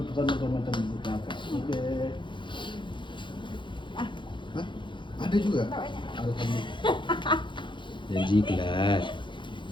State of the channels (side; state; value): right; late; 0.23 ms